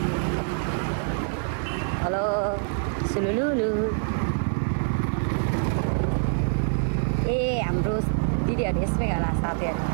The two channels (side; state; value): left; silent; digital silence